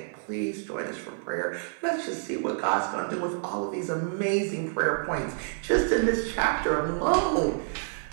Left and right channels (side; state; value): left; silent; 58 dB below the other